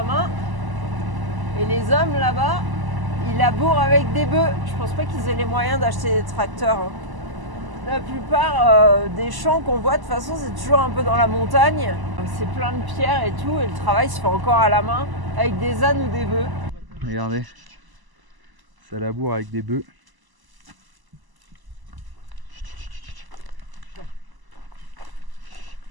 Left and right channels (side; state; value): left; late; 1.0 ms